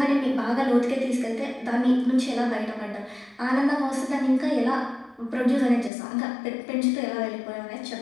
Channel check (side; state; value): right; drops out; at 5.9 s